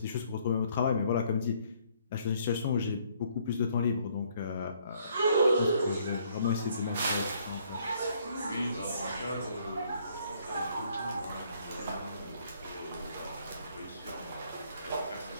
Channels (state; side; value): inverted; both; correlation -0.65